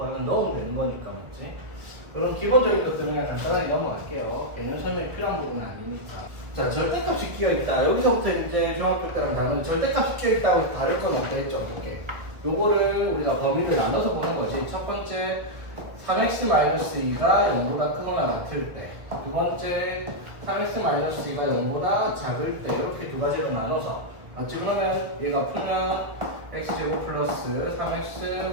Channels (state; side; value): late; left; 1.5 ms